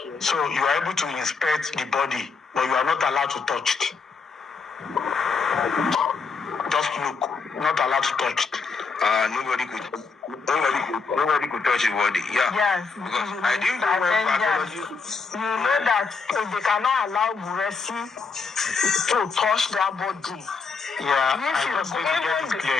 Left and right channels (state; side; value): quieter; right; 4.8 dB